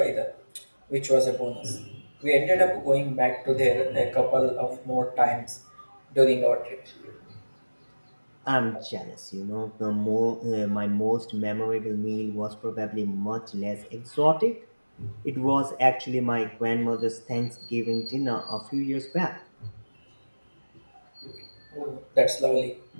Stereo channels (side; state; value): both; inverted; correlation -1.00